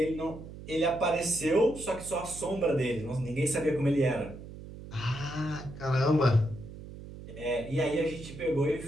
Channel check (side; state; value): right; noise; hum, 13 dB below the sound